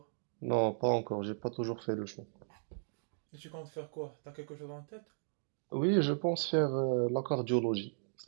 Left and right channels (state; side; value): silent; left; digital silence